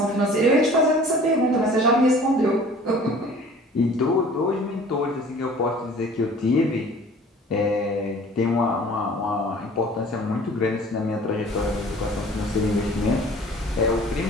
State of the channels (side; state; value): both; normal; correlation 0.48